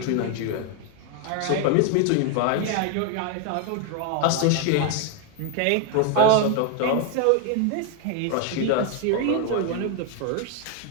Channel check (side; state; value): both; different; correlation 0.01